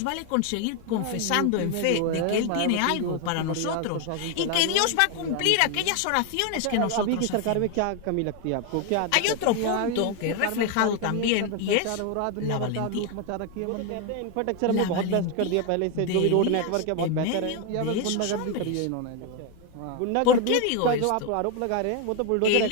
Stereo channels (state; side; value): different; both; correlation 0.01